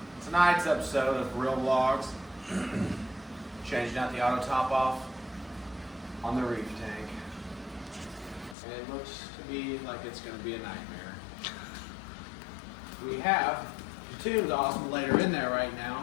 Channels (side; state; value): right; drops out; at 8.6 s